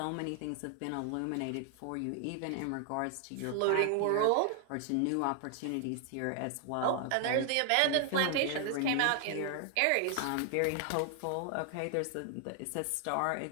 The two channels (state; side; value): different; both; correlation 0.00